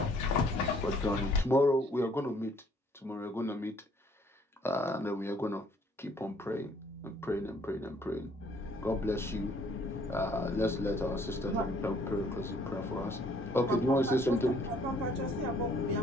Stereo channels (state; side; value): normal; both; correlation 0.61